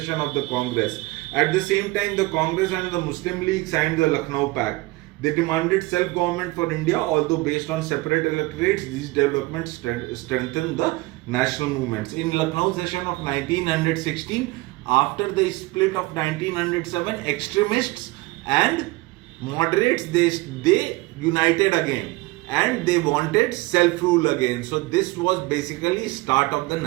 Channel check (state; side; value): quieter; left; 21.9 dB